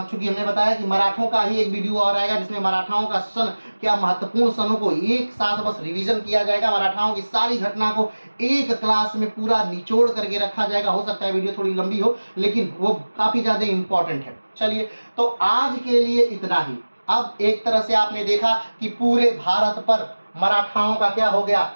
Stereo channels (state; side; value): inverted; both; correlation -1.00